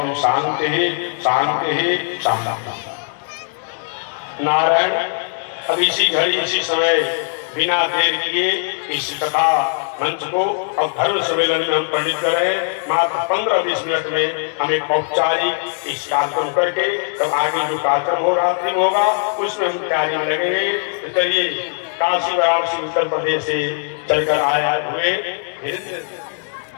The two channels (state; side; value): silent; right; 65 dB below the other